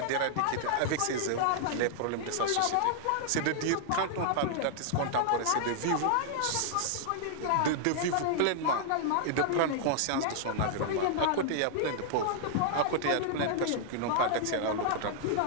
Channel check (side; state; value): both; different; correlation -0.01